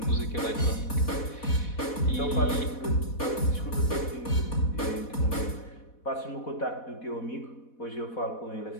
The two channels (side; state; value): right; late; 4.1 ms